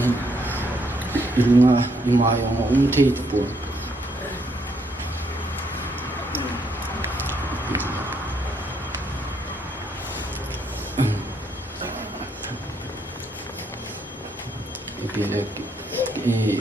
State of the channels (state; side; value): normal; both; correlation 0.73